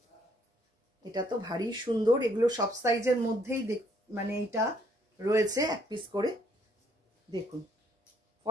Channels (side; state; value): both; normal; correlation 0.65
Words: এটা তো ভারী সুন্দর। এগুলো সব সাইজের মধ্যেই মানে এটা রয়েছে এক পিস করে। দেখুন